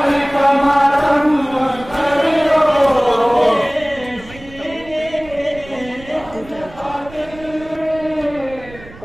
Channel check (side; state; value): right; noise; rumble, 19 dB below the sound